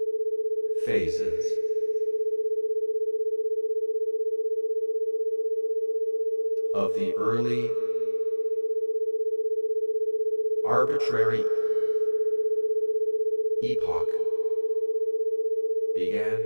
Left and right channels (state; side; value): inverted; both; correlation -1.00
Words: phases of the early arbitrary epoch began